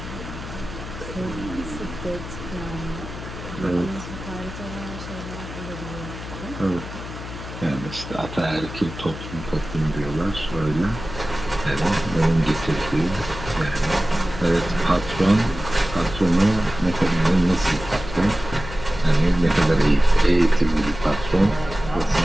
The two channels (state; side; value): noise; left; hum, 10 dB below the sound